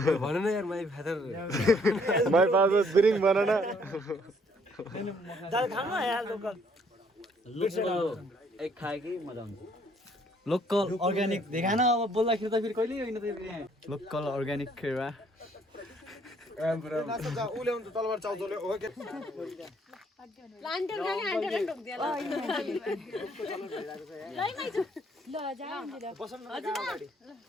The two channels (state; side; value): normal; both; correlation 0.65